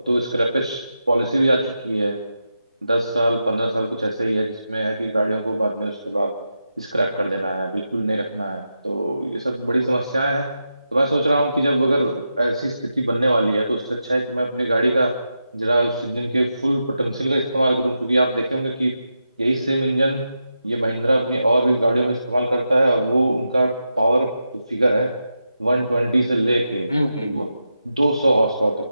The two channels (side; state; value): both; inverted; correlation -0.88